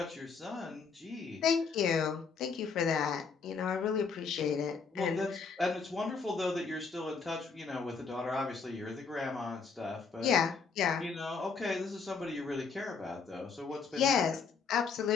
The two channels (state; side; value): quieter; right; 5.3 dB